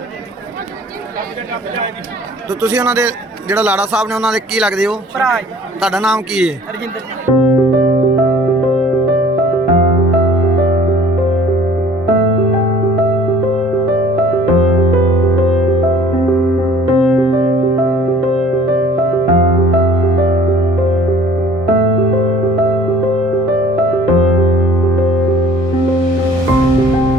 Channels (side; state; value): both; normal; correlation 0.51